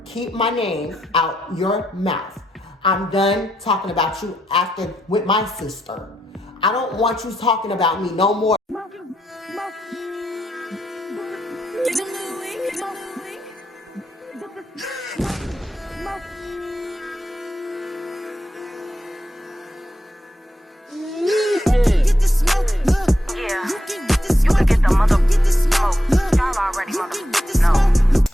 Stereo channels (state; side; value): normal; both; correlation 0.82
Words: keep my name out your mouth. I'm done talking about you after with my sister. I don't want you talking about me no more.